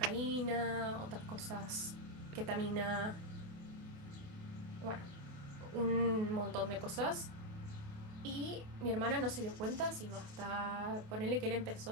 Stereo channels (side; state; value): left; late; 28 ms